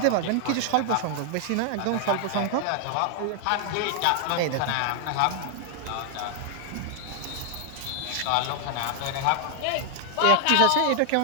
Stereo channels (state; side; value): different; both; correlation 0.00